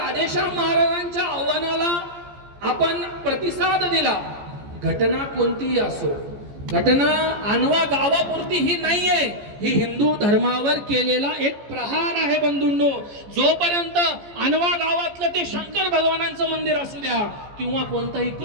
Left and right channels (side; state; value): left; late; 14 ms